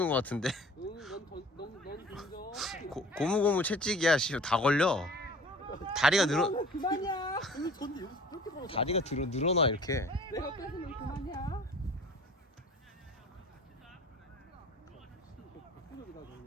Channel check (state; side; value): normal; both; correlation 0.46